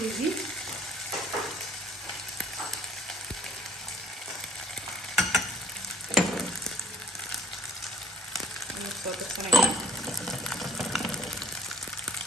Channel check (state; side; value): normal; both; correlation 0.58